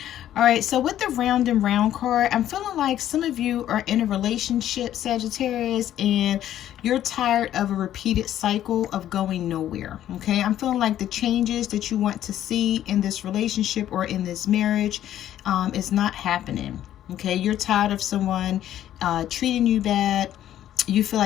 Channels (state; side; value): quieter; right; 11.8 dB